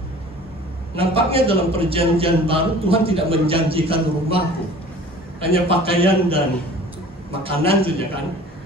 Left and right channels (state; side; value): normal; both; correlation 0.46